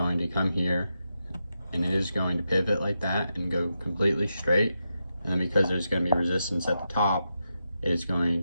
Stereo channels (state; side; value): inverted; both; correlation -0.86